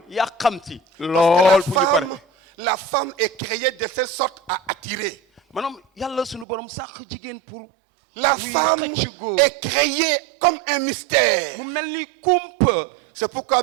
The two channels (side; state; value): left; drops out; at 6.5 s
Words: yàqamti. Parce que la lool fu ñu pare. femme la femme est créée de telle sorte à attirer. maanaam yàlla sunu borom sax jigéen pour. La femme est créée comme un mystère. mu mel ni kumpa. C'est pourquoi